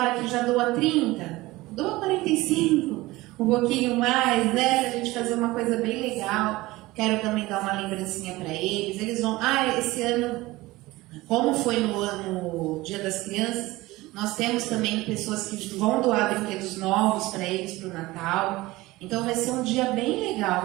que já doa 30, doa 45, um pouquinho mais, né, pra gente fazer uma coisa bem legal. Quero também dar uma lembrancinha para eles. Eles vão... esse ano, como foi no Dia das Crianças, nós temos também pessoas que vão doar brinquedos novos para eles para o Natal. Então vai ser um dia bem legal,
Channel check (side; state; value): left; quieter; 19.6 dB